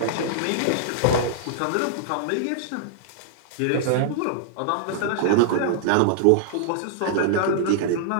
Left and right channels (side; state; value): both; different; correlation -0.01